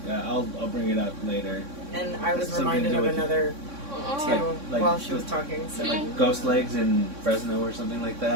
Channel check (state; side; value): late; left; 3.6 ms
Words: I'll bring it up later. and I was Something to reminded do of with- another too like while she was talking. So Ghost legs in Fresno or something like